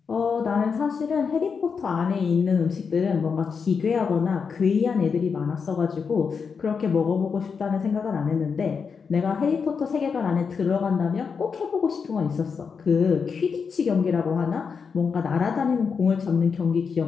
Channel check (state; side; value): quieter; right; 5.8 dB